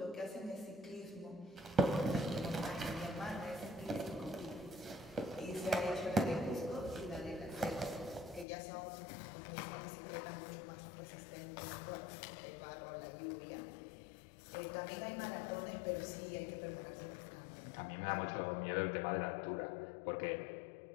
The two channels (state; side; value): drops out; right; at 8.5 s